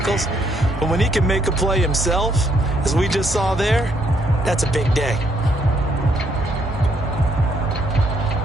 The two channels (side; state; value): both; normal; correlation 0.71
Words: But when he can make a play himself, as we just saw there, that's a big day.